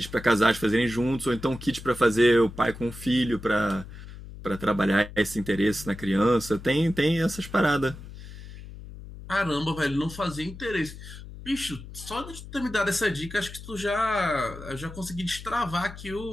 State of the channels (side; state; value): left; noise; hum, 14 dB below the sound